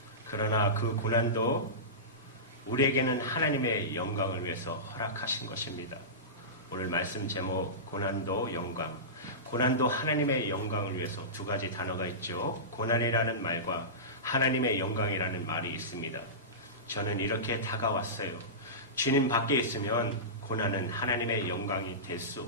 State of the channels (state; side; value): normal; both; correlation -0.20